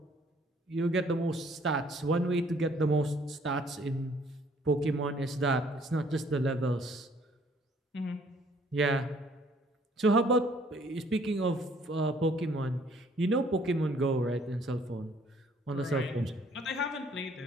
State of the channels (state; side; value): normal; both; correlation 0.61